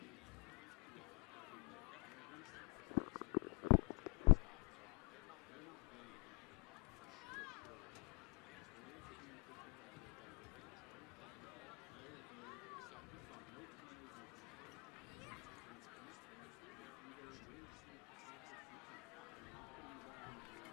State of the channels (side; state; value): right; quieter; 38.5 dB